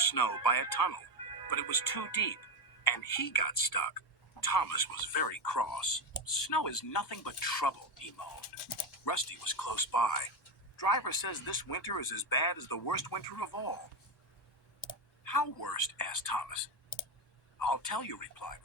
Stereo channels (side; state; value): both; normal; correlation 0.12